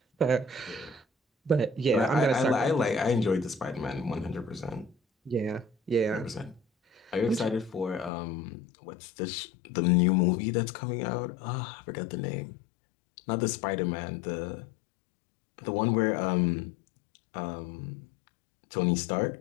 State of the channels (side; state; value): right; drops out; at 8.1 s